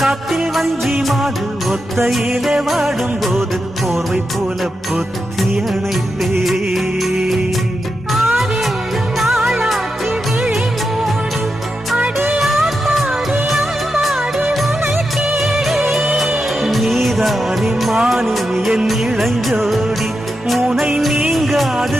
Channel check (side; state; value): both; normal; correlation 0.88